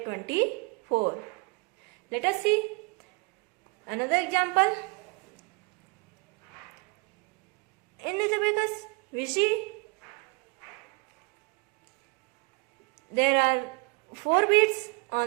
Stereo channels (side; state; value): left; quieter; 28.9 dB